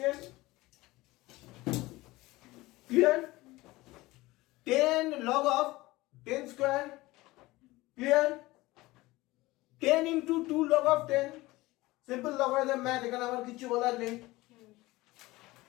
clear? 10 log of 10 square, clear? 10 into 2 log of 10, simple logarithm math, এখানে আমার কিছু বলার নেই,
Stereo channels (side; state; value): right; quieter; 19.7 dB